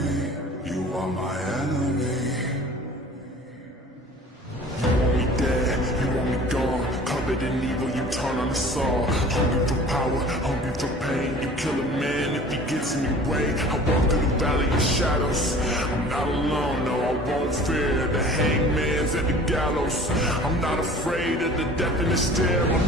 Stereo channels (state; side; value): normal; both; correlation 0.45